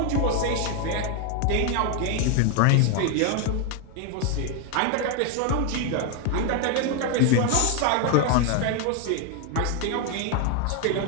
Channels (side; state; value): both; different; correlation 0.01